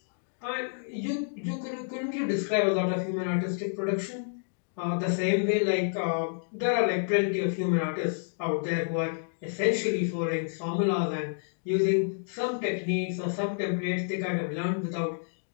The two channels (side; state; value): right; silent; digital silence